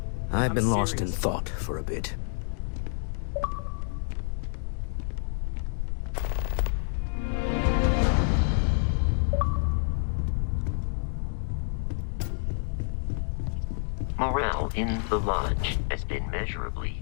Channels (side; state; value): right; silent; digital silence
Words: I've been lost in serious. thought for a bit. Morale in the lodge has been measurably